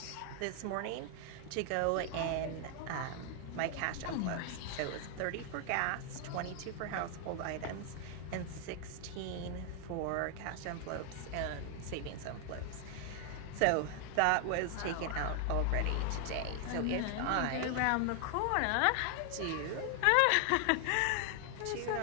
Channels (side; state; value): both; different; correlation 0.00